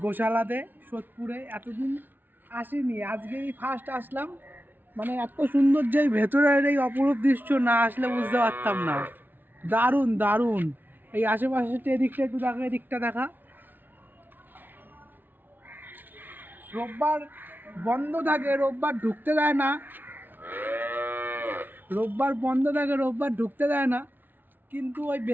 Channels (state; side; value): late; left; 0.089 ms